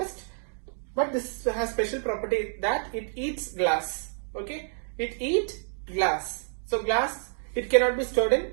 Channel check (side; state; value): left; silent; digital silence